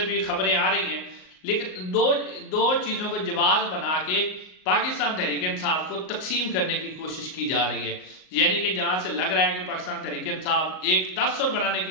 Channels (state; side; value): late; right; 38 ms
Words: بھی خبریں آ رہی ہیں، لیکن دو چیزوں کو جواز بنا کے پاکستان تحریک انصاف کو تقسیم کرنے کی کوشش کی جا رہی ہے، یعنی کہ جہاں سے لگ رہا ہے کہ پاکستان تحریک انصاف ایک تاثر بنانے